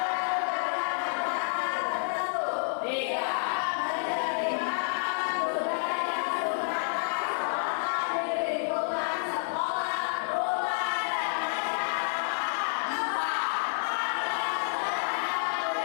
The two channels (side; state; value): right; silent; 58 dB below the other